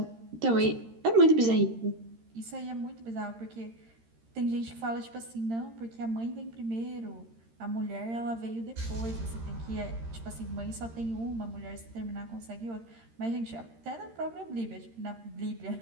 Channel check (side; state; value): left; late; 13 ms